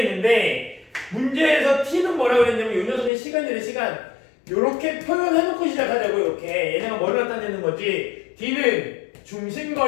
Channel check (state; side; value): drops out; right; at 3.1 s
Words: 있는데 문제에서 t는 뭐라고 했냐면 이 녀석의 시간이래. 시간. 요렇게 표현해놓고 시작하자고. 이렇게 얘네가 뭐를 나타내는 거지. d는